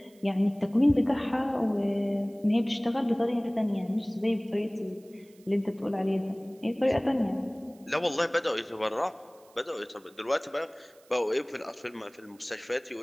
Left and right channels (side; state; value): right; noise; hiss, 29 dB below the sound